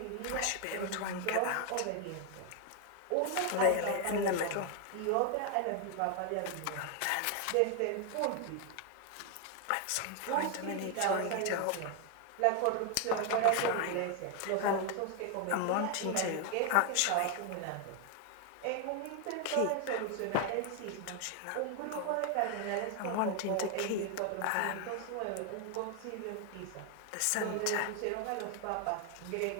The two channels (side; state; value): both; different; correlation 0.01